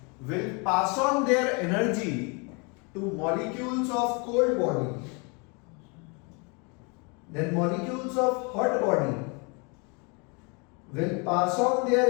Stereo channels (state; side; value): quieter; right; 32.1 dB